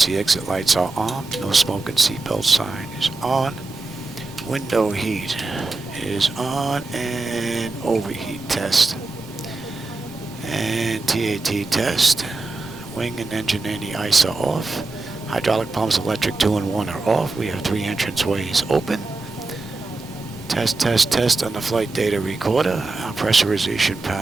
exit lights are on. No smoke and seatbelt sign is on. Window heat is on, and overheat test. And TAT test. Wing and engine anti-ice are off. Hydraulic pumps, electric 2 and 1 are off. We have 3 entrance ways open. Test, test, test on the flight data recorder. Our pressurization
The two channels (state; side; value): quieter; left; 3.4 dB